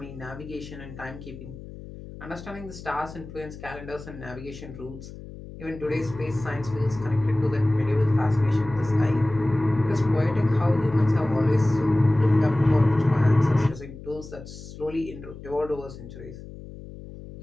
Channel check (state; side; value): noise; left; hum, 14 dB below the sound